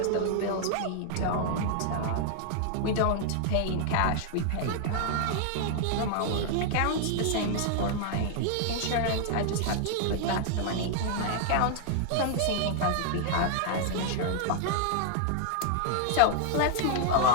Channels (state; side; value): different; both; correlation 0.00